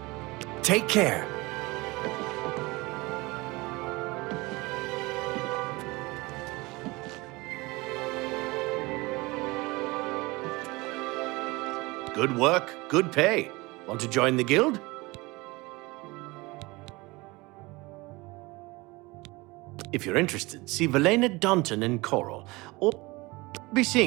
Take care. Good work, good pay. Want to join the guild? If you're interested, see Valena Daunton and Coral, or be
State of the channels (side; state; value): left; quieter; 23.2 dB